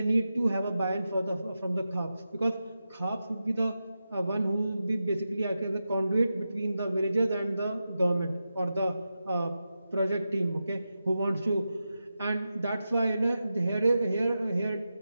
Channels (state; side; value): inverted; both; correlation -0.90